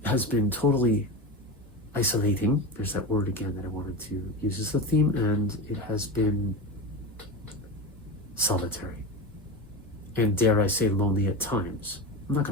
has been totally isolating. There's that word again that I wanted to use as the theme, and it has been solitary. And dare I say, lonely at times. I'm not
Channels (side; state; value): both; normal; correlation 0.23